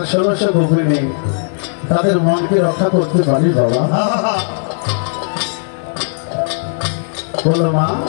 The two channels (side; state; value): right; silent; 62 dB below the other